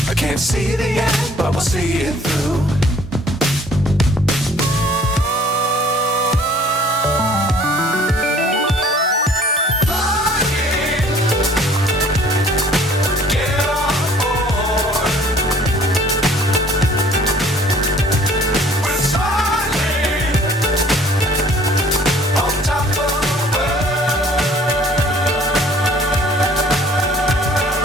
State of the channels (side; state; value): both; normal; correlation 0.54